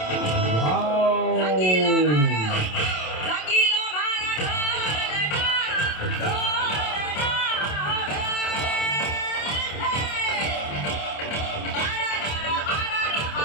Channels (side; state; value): right; late; 27 ms